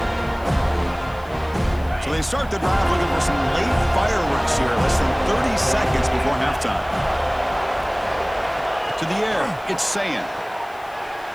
So they start the drive looking for some late fireworks here, less than 30 seconds before halftime. To the air, it's Sayin.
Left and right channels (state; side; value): noise; left; hiss, 26 dB below the sound